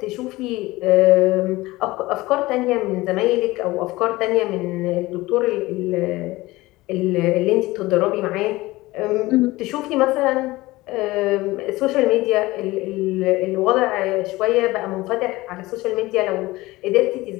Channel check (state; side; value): quieter; right; 19.6 dB